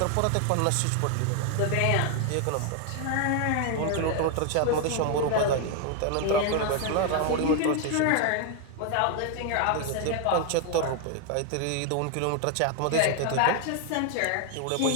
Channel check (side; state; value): both; different; correlation 0.00